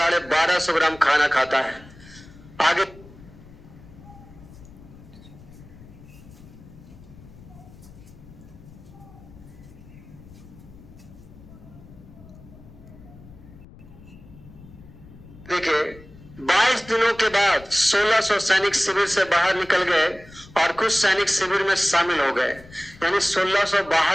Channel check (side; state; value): left; noise; rumble, 20 dB below the sound